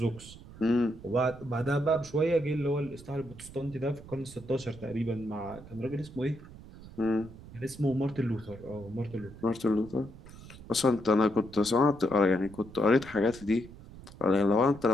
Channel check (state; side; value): noise; right; rumble, 17 dB below the sound